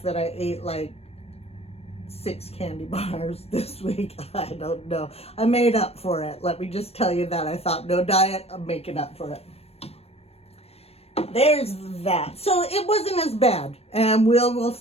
that I ate like 6 candy bars this week. I don't know. I made up for it. Let me just tell you that. I thought, no diet, I'm making up for it. There's that. So it wasn't as bad, and we'll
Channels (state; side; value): late; right; 0.29 ms